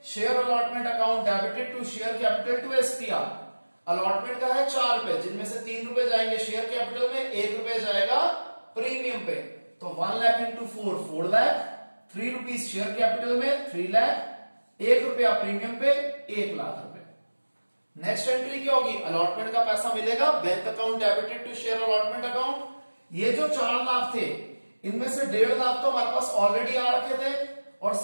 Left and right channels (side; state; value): both; inverted; correlation -1.00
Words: Share allotment account debited to share capital to SPR. Allotment का है 4 रुपए, जिनमें से 3 रुपए जाएंगे शेयर कैपिटल में, 1 रुपए जाएगा प्रीमियम पे, तो 1 lakh into 4 lakh, 3 rupees share capital में 3 लाख, 1 रुपया प्रीमियम पे 1 लाख रुपए। नेक्स्ट एंट्री क्या होगी, अलॉटमेंट का पैसा मिलेगा bank account debited to share allotment account. ये जो 4 लाख थे इनमें से 1.5 लाख तो हमारे पास ऑलरेडी आ रखे थे और